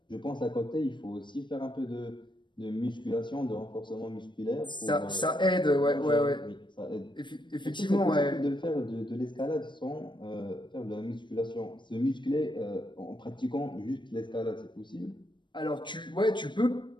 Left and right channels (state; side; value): late; right; 0.22 ms